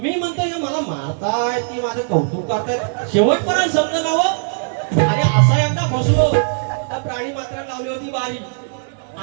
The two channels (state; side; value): silent; left; digital silence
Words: म्हणतो हे मला मारताय ती माझं कौतुक करताय शेवटपर्यंत शब्द नाव आणि असा एकदा फसलो तर प्राणी मात्र लावली होती बारी